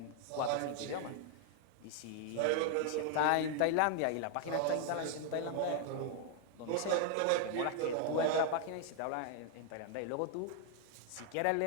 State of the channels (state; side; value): different; both; correlation 0.00